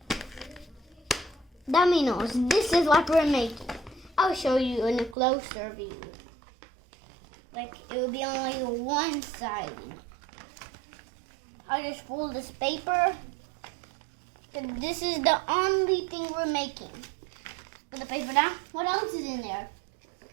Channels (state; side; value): drops out; left; at 5.2 s